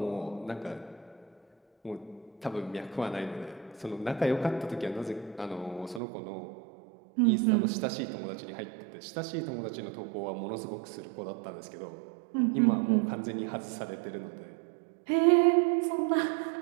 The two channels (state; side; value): drops out; left; at 6.0 s